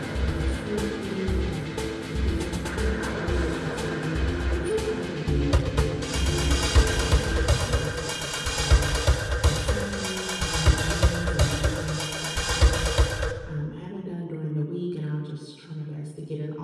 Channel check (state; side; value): identical; both; correlation 1.00